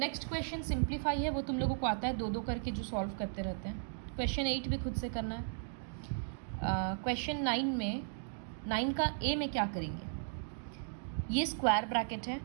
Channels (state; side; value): silent; left; digital silence